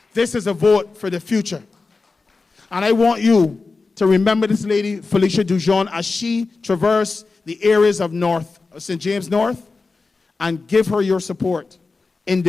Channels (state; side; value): quieter; right; 4.0 dB